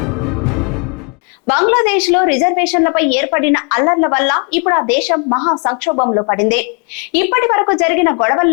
బంగ్లాదేశ్ లో రిజర్వేషన్లపై ఏర్పడిన అల్లర్ల వల్ల ఇప్పుడు ఆ దేశం మహా సంక్షోభంలో పడింది. ఇప్పటి వరకు జరిగిన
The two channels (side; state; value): right; quieter; 36.5 dB